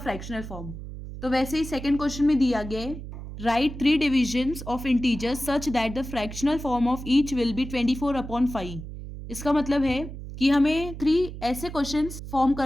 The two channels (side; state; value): right; noise; hum, 10 dB below the sound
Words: फॉर्म। तो वैसे ही सेकंड क्वेश्चन में दिया गया है, right 3 divisions of integers such that the fractional form of each will be 24/5। इसका मतलब है कि हमें 3 ऐसे क्वेश्चंस फॉर्म